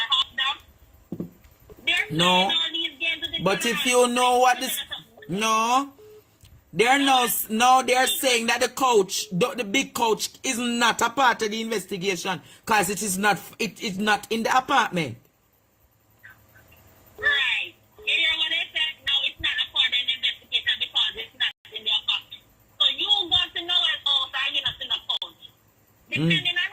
half down? They're playing all these games with the But if you know what this... No. They're now they're saying that the coach, the big coach, is not a part of the investigation because it is not in the apartment. Right. You hear what they said? No, it's not a part of the investigation because it's not in the apartment. So you go to Noel's house and you're not in the coach. Depending on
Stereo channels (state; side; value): identical; both; correlation 1.00